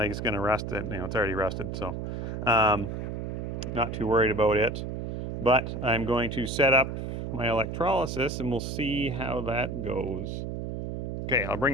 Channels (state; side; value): noise; right; hum, 5 dB below the sound